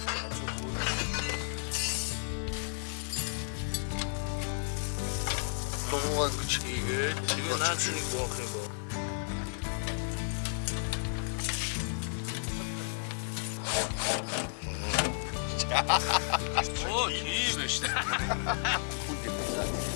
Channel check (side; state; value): right; silent; 56 dB below the other